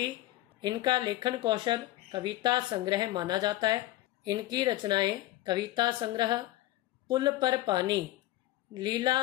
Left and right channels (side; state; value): right; quieter; 16.2 dB